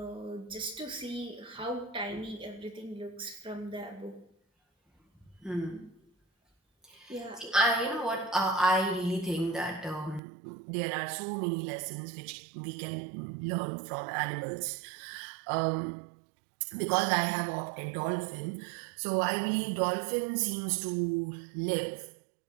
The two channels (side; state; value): left; drops out; at 10.2 s